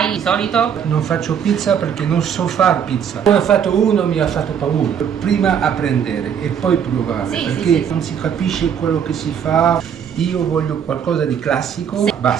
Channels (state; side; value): quieter; left; 8.1 dB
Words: di solito? Non faccio pizza perché non so fare pizza. Poi ho fatto uno, mi ha fatto paura. Prima apprendere e poi provare, Sì, perché sì. non si capisce quello che si fa. Io voglio qualcosa di classico, Sì.